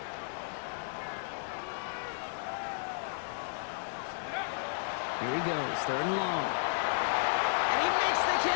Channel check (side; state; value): right; silent; digital silence